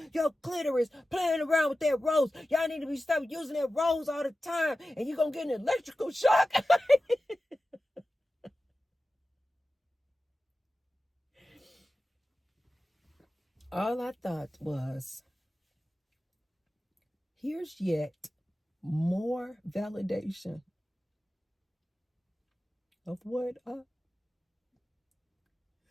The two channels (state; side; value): normal; both; correlation 0.94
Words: your clitoris, playing around with that rose. Y'all need to stop using that rose all the time and you're going to get an electrical shock. All I thought was, here's yet more validation of what I